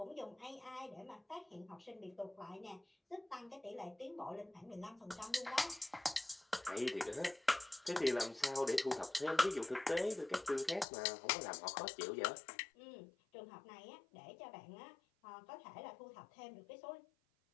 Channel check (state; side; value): drops out; right; at 10.9 s